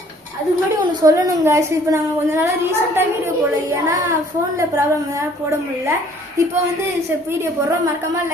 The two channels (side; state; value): both; normal; correlation 0.57